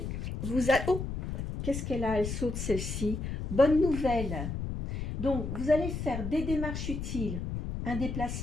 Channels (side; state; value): left; noise; rumble, 4 dB below the sound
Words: vous allez... Oh, qu'est-ce qu'elle a? Elle saute celle-ci. Bonne nouvelle. Donc, vous allez faire des démarches utiles, un